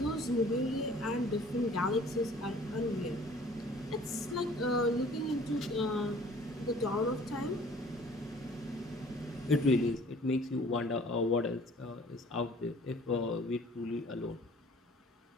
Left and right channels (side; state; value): both; normal; correlation 0.51